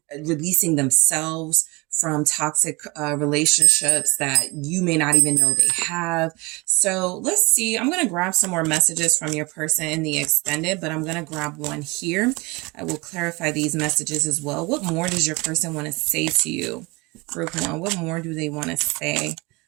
releasing themselves from toxic relationships that you may not even know they have. So let's see. I'm going to grab some more messages from your person in the extended, but I'm going to grab one here. I will clarify these messages as well. What more does your person want to say to you? Group 1, what more do they want to say?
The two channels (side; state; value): left; quieter; 25.6 dB